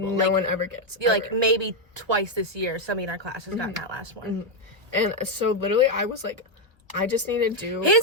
No one ever gets. Like maybe twice this year, somebody in our class has gotten that last one. And so literally I was like, I just need to do.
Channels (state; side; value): late; left; 1.2 ms